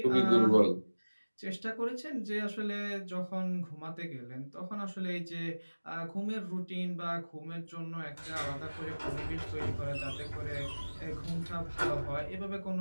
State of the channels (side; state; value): both; inverted; correlation -1.00